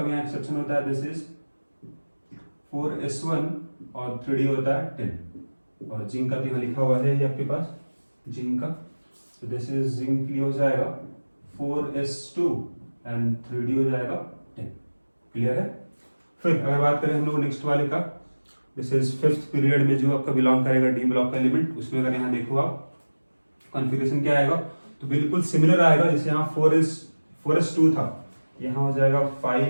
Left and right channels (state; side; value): inverted; both; correlation -1.00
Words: भी यहाँ एक्सेप्शन होता है, दिस इज 4s1 और 3d होता है 10। और जिंक का तो यहाँ लिखा हुआ है ये आपके पास, जिंक का, तो दिस इज जिंक के लिए हो जाएगा 4s2 एंड 3d हो जाएगा 10। क्लियर है। फिर अगर बात करें हम लोग नेक्स्ट वाले का, दिस इज 5th पीरियड में जो आपका बिलोंग करेगा डी ब्लॉक का एलिमेंट, उसमें अगर यहाँ देखो आप कॉन्फ़िगरेशन क्या आएगा तो बिल्कुल सिमिलर आएगा। जैसे यहाँ 4s2 था, यहाँ हो जाएगा